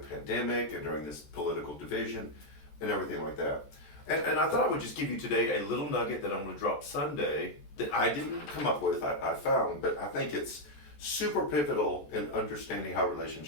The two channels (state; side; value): late; right; 14 ms